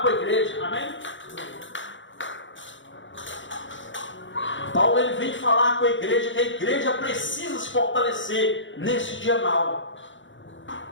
a igreja, amém? Paulo ele vem falar com a igreja que a igreja precisa se fortalecer nesse dia mau,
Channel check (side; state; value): right; late; 0.55 ms